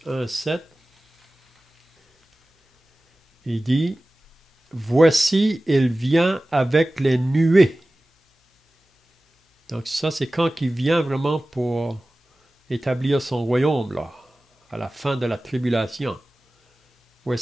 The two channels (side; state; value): both; normal; correlation 0.97